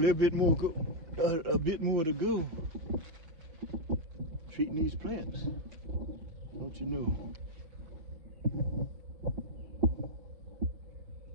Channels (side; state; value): left; late; 6.3 ms